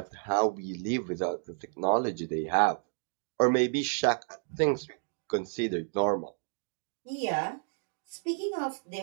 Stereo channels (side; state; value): left; silent; digital silence